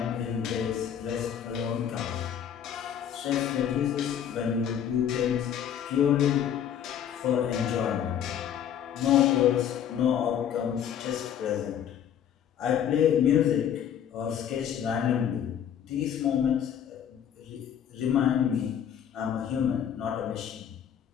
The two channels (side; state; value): right; quieter; 9.3 dB